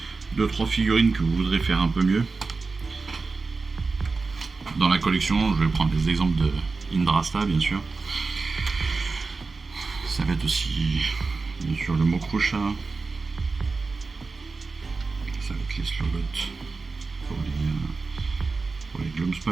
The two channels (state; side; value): quieter; left; 4.1 dB